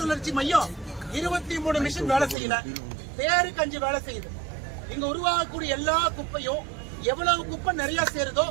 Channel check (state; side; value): drops out; left; at 2.4 s